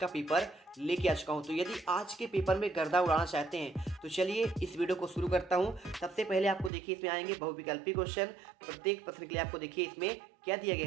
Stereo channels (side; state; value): left; drops out; at 6.7 s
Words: पेपर लेके आ चुका हूँ। तो यदि आज के पेपर में गर्दा उड़ाना चाहते हैं तो चलिए इस वीडियो को शुरू करता हूँ। सबसे पहले आपको देखिए इसमें आएंगे बहुविकल्पी क्वेश्चन। प्रत्येक प्रश्न के लिए आपको देखिए इसमें क्या दिया